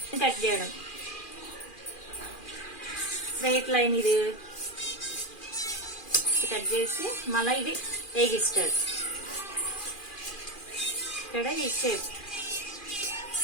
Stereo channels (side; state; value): right; late; 2.4 ms